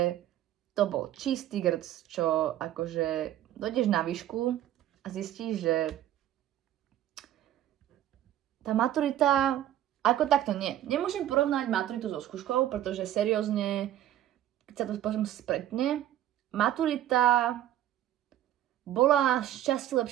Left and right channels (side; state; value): left; quieter; 12.4 dB